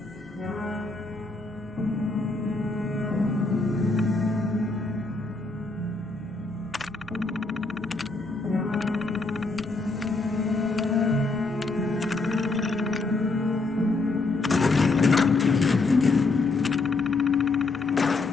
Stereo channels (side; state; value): right; quieter; 3.5 dB